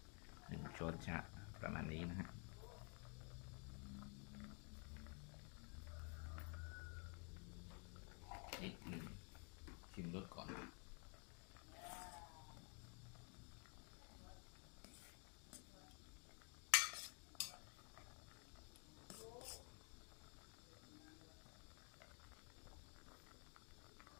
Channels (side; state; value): right; quieter; 38.6 dB